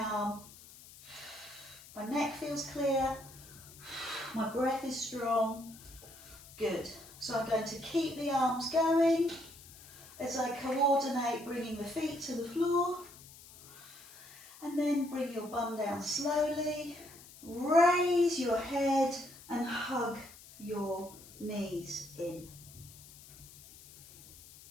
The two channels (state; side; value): noise; left; hiss, 19 dB below the sound